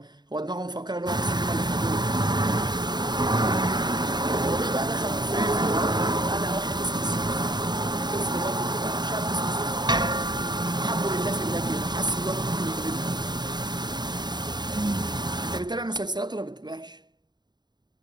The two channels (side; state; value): left; late; 0.21 ms